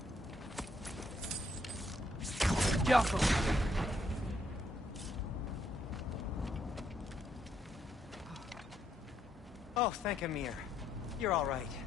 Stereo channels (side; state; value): both; normal; correlation 0.74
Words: Oh, thank Amir. You're all right.